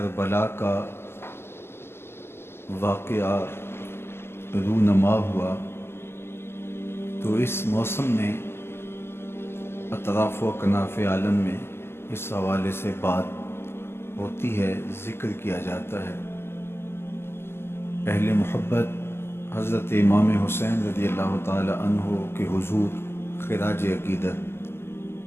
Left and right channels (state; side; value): late; right; 0.12 ms